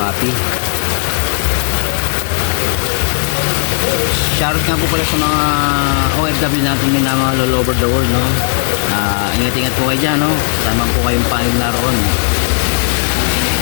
Shoutout nga po pala sa mga OFW natin din na mga all over the world, no? Ingat-ingat po kayo dyan, no? Tama po kayong panig naroon.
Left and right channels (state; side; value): silent; right; digital silence